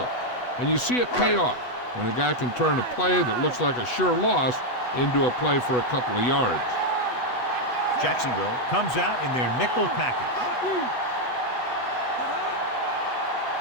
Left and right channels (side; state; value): right; late; 8.1 ms